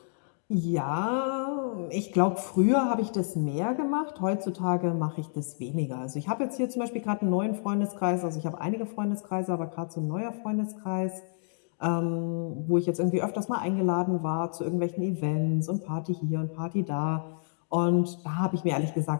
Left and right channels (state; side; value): silent; right; digital silence